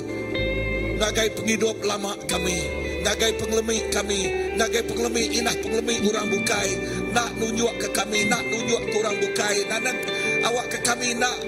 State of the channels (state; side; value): identical; both; correlation 1.00